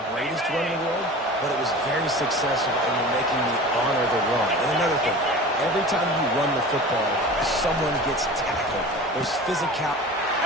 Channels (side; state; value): both; normal; correlation 0.37